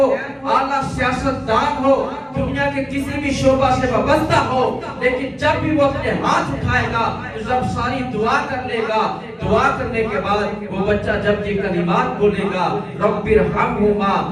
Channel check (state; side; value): identical; both; correlation 1.00